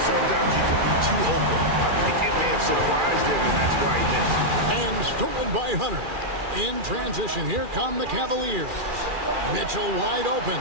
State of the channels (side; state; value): left; late; 2.4 ms